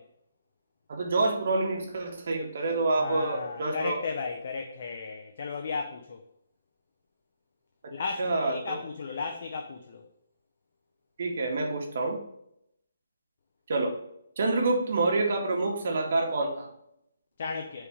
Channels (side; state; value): both; inverted; correlation -0.76